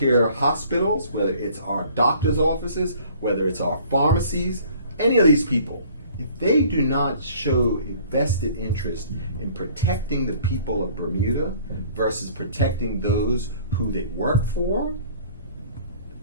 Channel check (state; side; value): inverted; both; correlation -0.53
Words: hospitals, whether it's our doctor's offices, whether it's our pharmacies, any of these people, if they do not show a vested interest in protecting the people of Bermuda versus protecting those who they work for,